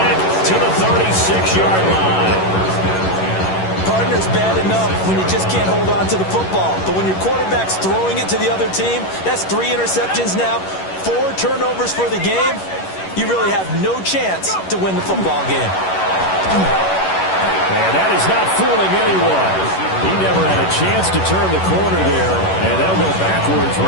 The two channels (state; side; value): late; right; 11 ms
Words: to the 36-yard line. Partner's bad enough when you just can't hold on to the football. But when your quarterback's throwing it to the other team, that's 3 interceptions now, 4 turnovers for the game. You really have no chance to win the football game. And that is not fooling anyone. He never had a chance to turn the corner there, and they'll go backwards